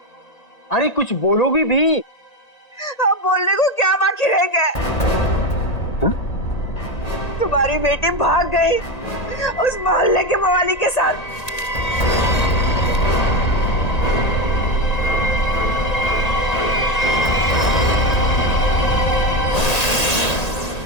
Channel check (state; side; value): late; right; 1.8 ms